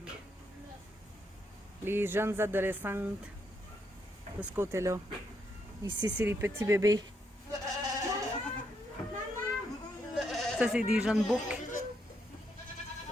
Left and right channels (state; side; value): normal; both; correlation 0.77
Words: les jeunes adolescentes de ce côté-là. Ici, c'est les petits bébés. Ça, c'est des jeunes books.